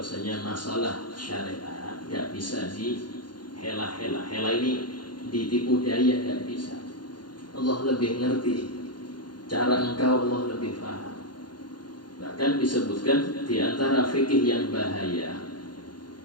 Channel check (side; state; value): right; late; 0.71 ms